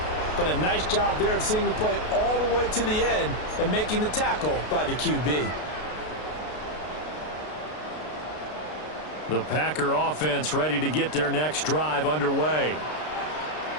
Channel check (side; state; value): right; late; 33 ms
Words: But a nice job there of seeing the play all the way to the end and making the tackle by the QB. The Packer offense ready to get their next drive underway.